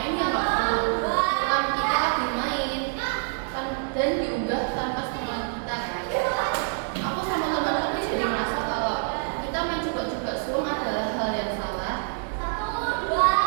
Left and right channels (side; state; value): left; silent; 61 dB below the other